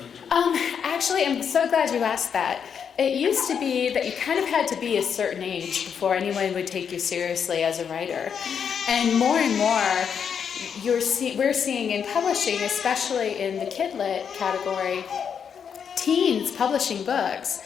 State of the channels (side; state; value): right; quieter; 7.3 dB